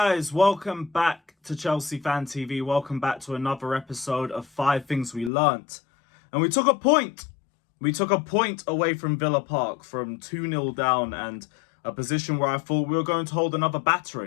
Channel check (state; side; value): drops out; right; at 5.3 s